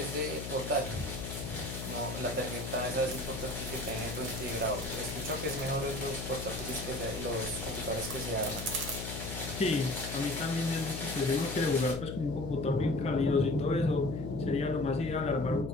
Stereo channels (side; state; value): left; noise; hum, 6 dB below the sound